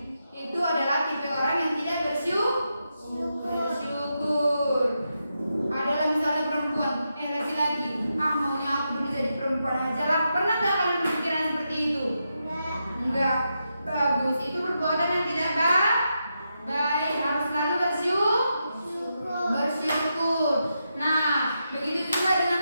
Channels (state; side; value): inverted; both; correlation -0.85